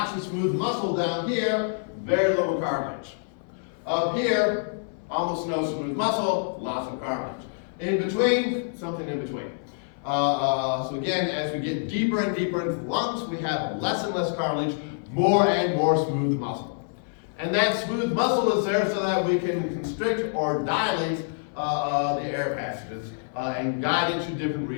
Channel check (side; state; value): right; silent; 61 dB below the other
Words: of smooth muscle down here, very little cartilage. Up here, almost no smooth muscle, lots of cartilage. In between, something in between. So again, as we get deeper and deeper into the lungs, we have less and less cartilage, more and more smooth muscle. And that smooth muscle is there so that we can constrict or dilate the air passages and guide into different